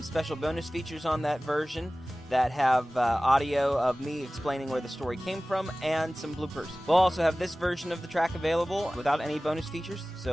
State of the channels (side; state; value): both; normal; correlation 0.97